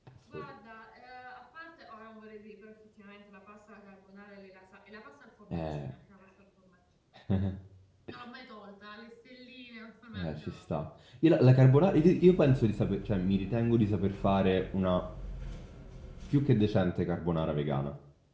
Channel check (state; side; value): identical; both; correlation 1.00